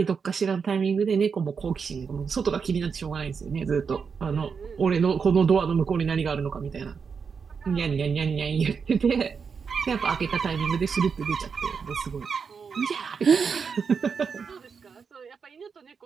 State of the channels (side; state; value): left; quieter; 5.9 dB